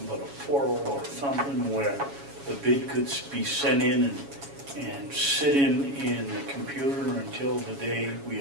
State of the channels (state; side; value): late; left; 7.2 ms